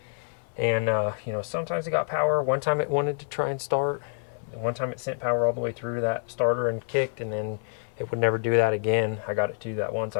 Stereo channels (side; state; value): right; silent; 60 dB below the other